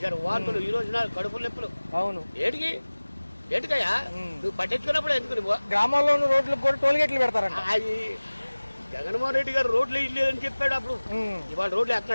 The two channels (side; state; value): both; inverted; correlation -1.00